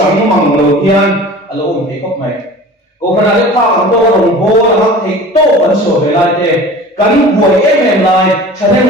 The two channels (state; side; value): normal; both; correlation 0.40